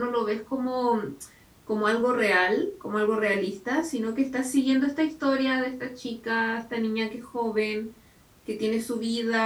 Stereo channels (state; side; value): identical; both; correlation 1.00